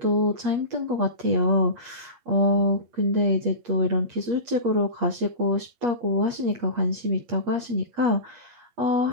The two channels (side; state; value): left; late; 8.4 ms